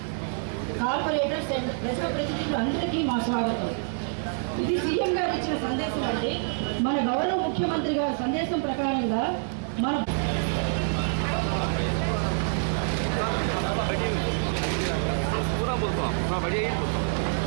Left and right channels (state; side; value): silent; left; 60 dB below the other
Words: కార్పొరేటర్స్ అండ్ ప్రజాప్రతినిధులు అందరికీ మా స్వాగతం। ఇది సీఎం గారు ఇచ్చిన సందేశం అంటే మన గౌరవ ముఖ్యమంత్రి గారి సందేశం ప్రకారంగా మన